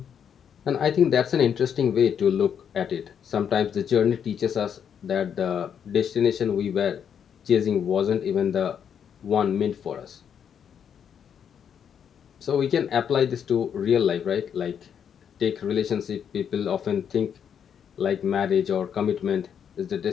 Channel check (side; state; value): right; quieter; 8.1 dB